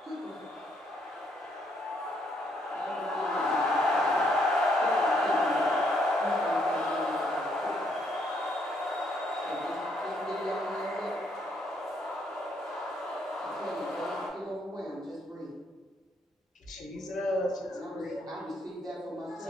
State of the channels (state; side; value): normal; both; correlation 0.72